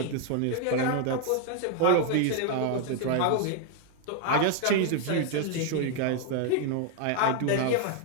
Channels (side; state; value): both; different; correlation 0.00